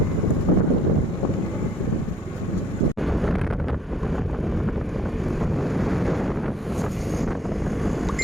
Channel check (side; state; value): both; normal; correlation 0.62